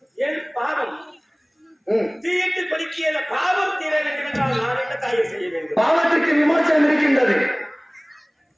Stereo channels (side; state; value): both; identical; correlation 1.00